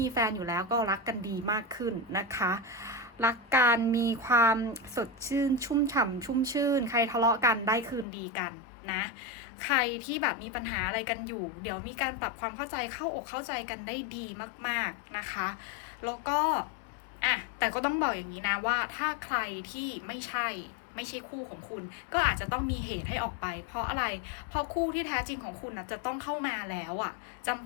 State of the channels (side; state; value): right; drops out; at 8.1 s